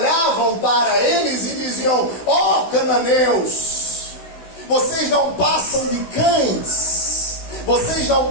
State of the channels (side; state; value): right; late; 16 ms